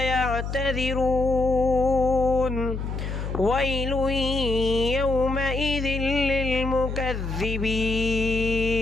ويل يومئذ للمكذبين.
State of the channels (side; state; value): left; noise; hum, 4 dB below the sound